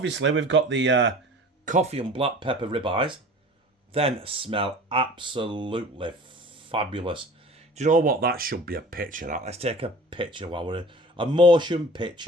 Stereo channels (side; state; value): both; normal; correlation 0.42